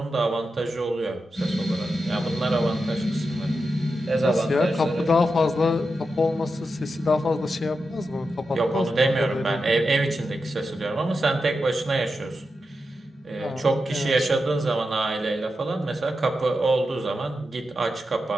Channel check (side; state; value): both; normal; correlation 0.89